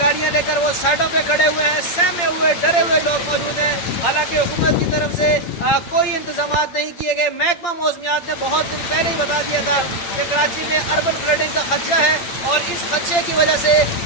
लेकर वो साइडों पे खड़े हुए हैं, सहमे हुए डरे हुए लोग मौजूद हैं। हालांकि हुकूमत की तरफ से कोई इंतजाम नहीं किए गए। महकमा मौसमियात ने बहुत दिन पहले ही बता दिया था कि कराची में अर्बन फ्लडिंग का खदशा है और इस खदशे की वजह से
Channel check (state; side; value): late; right; 8.7 ms